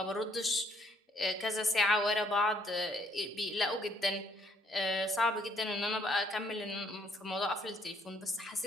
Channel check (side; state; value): both; normal; correlation 0.67